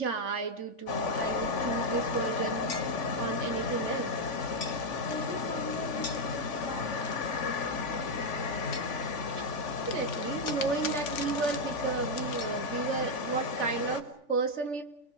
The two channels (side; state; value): right; late; 3.5 ms